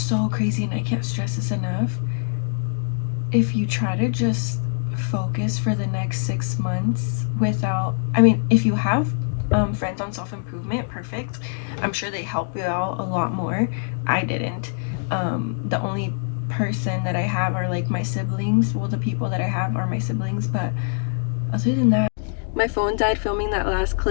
so crazy, and I can't stress this enough. If you try to just focus for the next 6 months without, I mean, if you have friends on self improvement, perfect. I'm sure they help you out a lot more. I didn't. The only person that I have are like my siblings. Well, the people that I have are my siblings, but other than that, my phone died filming that last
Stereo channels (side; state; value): right; silent; digital silence